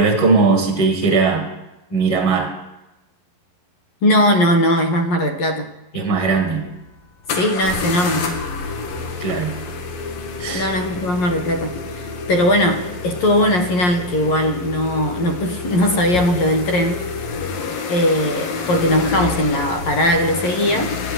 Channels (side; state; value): right; late; 11 ms